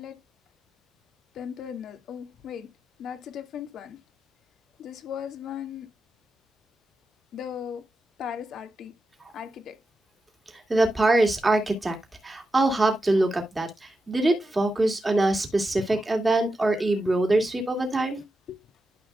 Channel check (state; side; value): normal; both; correlation 0.89